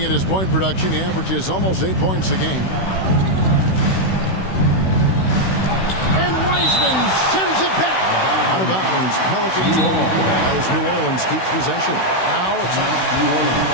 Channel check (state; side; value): late; right; 16 ms